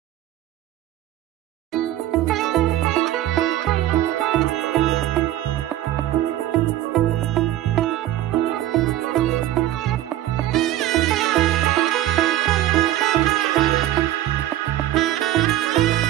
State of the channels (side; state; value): left; quieter; 13.7 dB